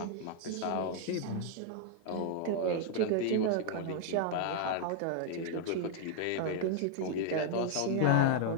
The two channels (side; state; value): both; different; correlation 0.00